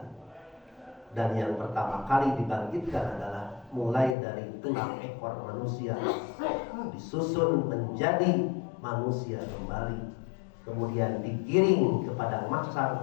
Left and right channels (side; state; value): right; drops out; at 4.2 s